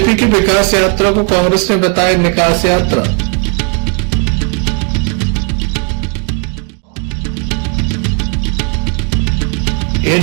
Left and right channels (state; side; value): quieter; left; 36.2 dB